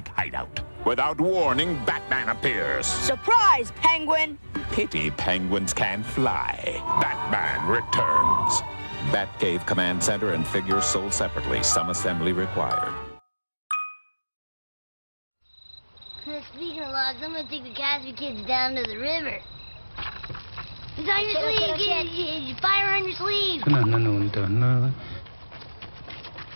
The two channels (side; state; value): both; inverted; correlation -1.00